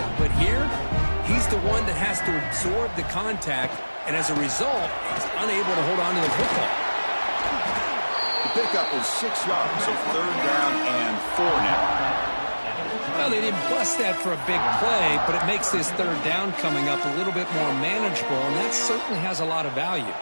but here, he's the one that has to absorb the contact, and as a result, he's unable to hold on to the football. The pickup is 6 yards, so third down and 4 now. Well, they didn't bust that for a big play, but it makes this third down coming up a little bit more manageable, and that certainly has a lot of value.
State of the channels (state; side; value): inverted; both; correlation -1.00